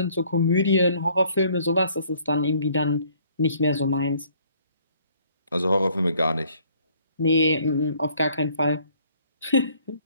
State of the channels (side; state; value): both; inverted; correlation -0.61